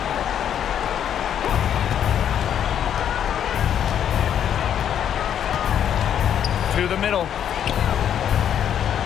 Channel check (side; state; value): right; quieter; 9.4 dB